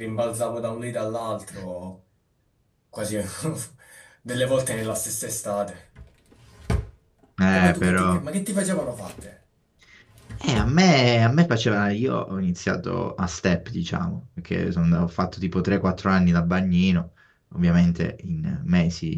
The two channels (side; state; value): both; identical; correlation 1.00